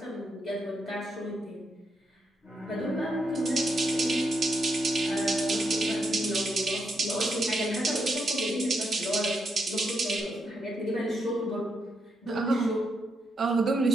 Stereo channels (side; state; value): both; normal; correlation 0.80